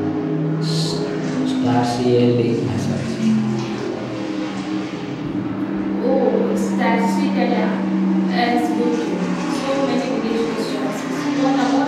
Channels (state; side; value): identical; both; correlation 1.00